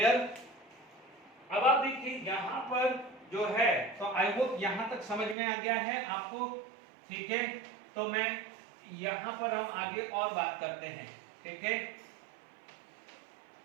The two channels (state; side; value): drops out; left; at 5.4 s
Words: अब आप देखिए यहाँ पर जो है, तो आई होप यहाँ तक समझ में आ गया है आपको, ठीक है? तो मैं यहाँ पर हम आगे और बात करते हैं, ठीक है?